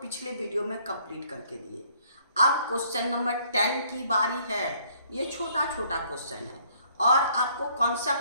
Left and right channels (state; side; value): inverted; both; correlation -0.63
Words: वीडियो में कंप्लीट करके दिए। अब क्वेश्चन नंबर 10 की बारी है। ये छोटा छोटा क्वेश्चन है और आपको